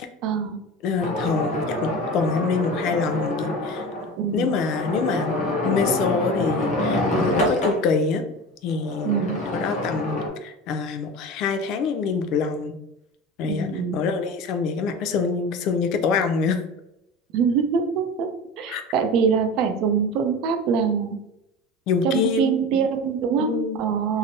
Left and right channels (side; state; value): both; normal; correlation 0.31